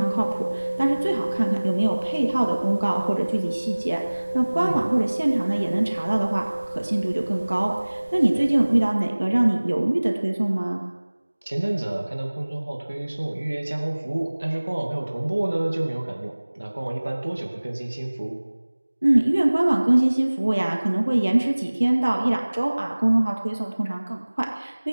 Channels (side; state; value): both; inverted; correlation -1.00